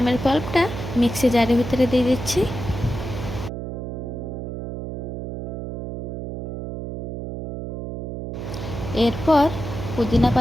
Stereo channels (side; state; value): right; noise; hum, 6 dB below the sound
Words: পাল্পটা মিক্সি জারের ভিতরে দিয়ে দিচ্ছি। এরপর পুদিনা